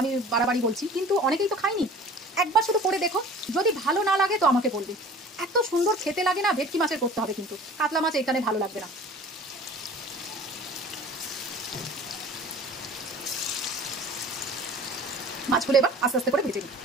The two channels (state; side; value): normal; both; correlation 0.44